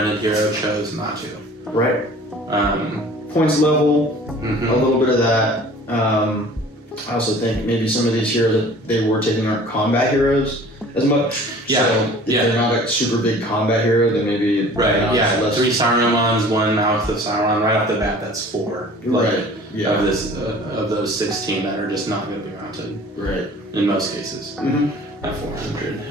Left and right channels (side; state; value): both; normal; correlation 0.47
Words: hero chose not to. Right. Points level, Mm-hmm. a little bit of that. I also think maybe some of these heroes that they were taking aren't combat heroes as much. Yeah. So if they're not a super big combat hero, then maybe Right, yeah. less. 3 Sarumans, 1 Mouth of Sauron. Right off the bat, that's 4. Right. Yeah. Of those 16 that are just not going to be mounted. Right. In most cases. Mm-hmm. At